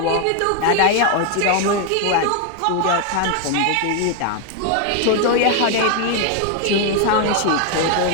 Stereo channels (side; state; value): both; different; correlation 0.01